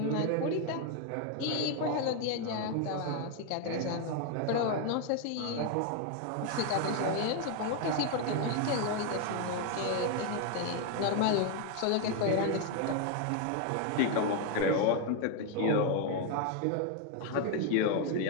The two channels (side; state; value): both; different; correlation 0.01